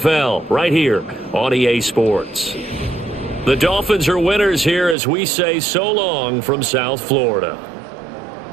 right here on EA Sports. The Dolphins are winners here as we say so long from South Florida.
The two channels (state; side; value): drops out; left; at 5.0 s